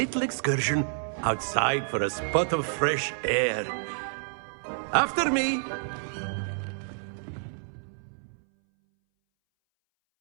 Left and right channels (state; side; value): silent; left; 59 dB below the other